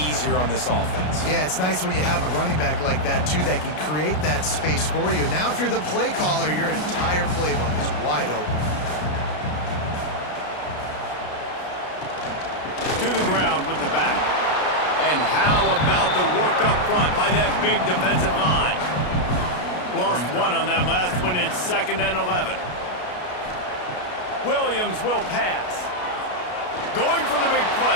on this offense. Yeah, it's nice when you have a running back like that, too, that can create that space for you. Now, if you're the play caller, your entire playbook is wide open. To the ground with the back. And how about the work up front by that big defensive line? Lost 1 on that last one. It's 2nd and 11. Williams will pass. Going for the big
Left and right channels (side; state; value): right; late; 33 ms